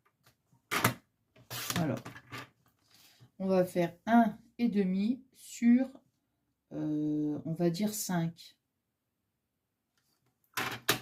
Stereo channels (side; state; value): both; identical; correlation 1.00